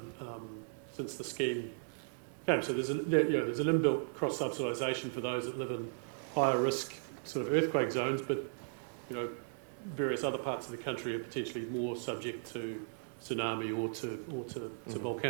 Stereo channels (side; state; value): left; silent; digital silence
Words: since the scheme came. So there's an inbuilt cross-subsidisation for those that live in higher risk sort of earthquake zones, but various other parts of the country are potentially more subject to tsunami or to